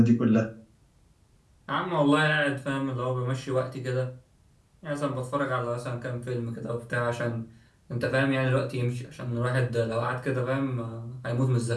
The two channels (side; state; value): both; identical; correlation 1.00